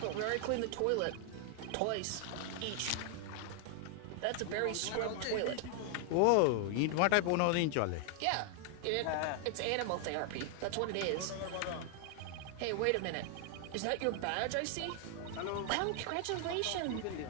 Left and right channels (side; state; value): both; different; correlation 0.00